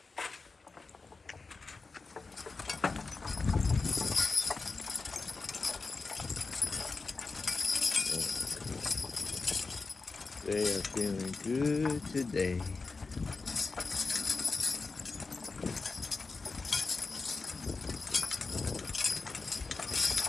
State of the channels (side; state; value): right; quieter; 4.1 dB